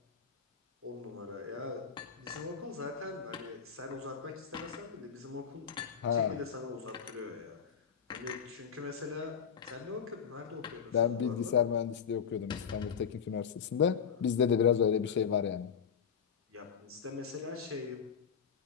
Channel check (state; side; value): quieter; right; 7.2 dB